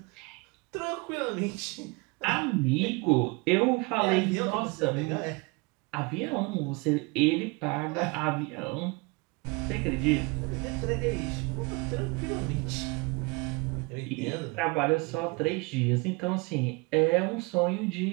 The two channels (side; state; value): left; quieter; 27.3 dB